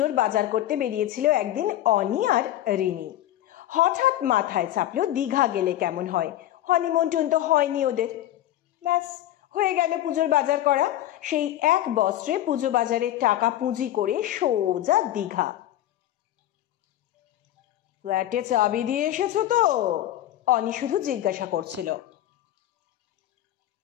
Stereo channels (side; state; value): right; quieter; 13.3 dB